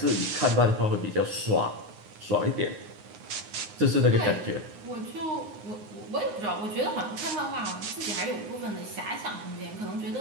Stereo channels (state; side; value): late; left; 9.6 ms